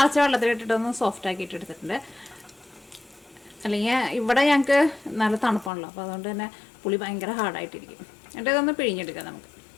വെള്ളത്തിലിട്ടിട്ടൊന്ന് സോഫ്റ്റ് ആക്കിയിട്ട് എടുത്തിട്ടുണ്ട്. അല്ലെങ്കിൽ ഇവിടെ ഞങ്ങൾക്ക് നല്ല തണുപ്പാണല്ലോ, അപ്പോൾ അതുകൊണ്ട് തന്നെ പുളി ഭയങ്കര ഹാർഡായിട്ടിരിക്കും. എന്നിട്ട് ഇതൊന്ന് പിഴിഞ്ഞെടുക്കാം നമുക്ക്.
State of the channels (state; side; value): drops out; right; at 5.7 s